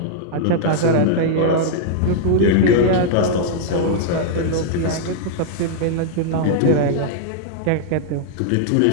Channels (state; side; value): different; both; correlation -0.01